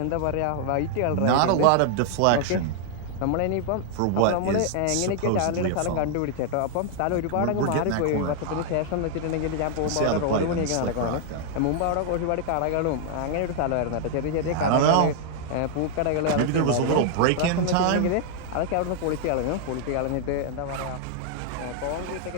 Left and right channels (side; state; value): both; different; correlation 0.00